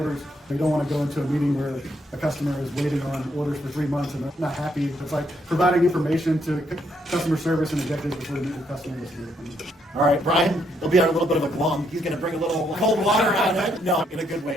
They don't want to go into a meeting where a customer is waiting on orders for 3 months and they're not happy. It's like providing information to customer service and executives before they meet with customers. All right, Brian, he'll be on a little bit of a glum. He's going to bring a little cold water on it. No, in a good way,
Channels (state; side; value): normal; both; correlation 0.74